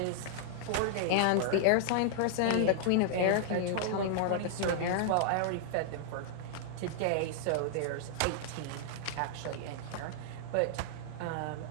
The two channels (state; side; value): different; both; correlation -0.01